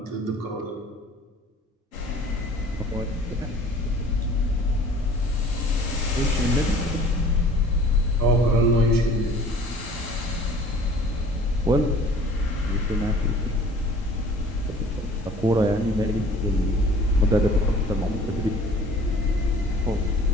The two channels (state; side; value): normal; both; correlation 0.49